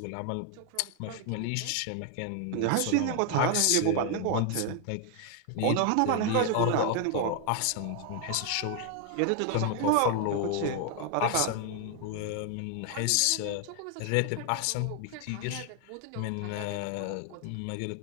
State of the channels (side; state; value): both; different; correlation 0.00